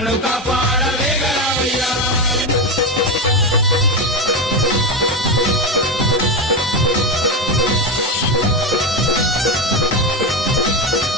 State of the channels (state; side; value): normal; both; correlation 0.14